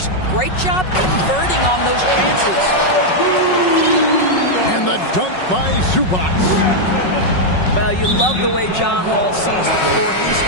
Great job converting on those chances. And the dunk by Zubac. Well, you love the way John Wall sees the floor. He's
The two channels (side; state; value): right; late; 5.4 ms